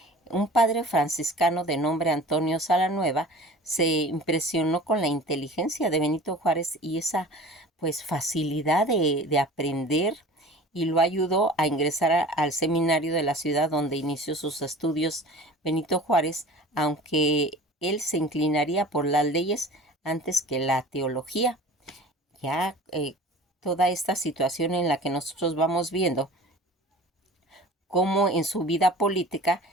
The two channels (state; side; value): normal; both; correlation 0.41